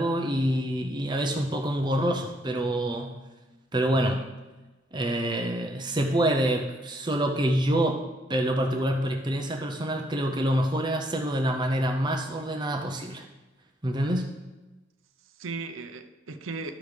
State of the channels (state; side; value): normal; both; correlation 0.71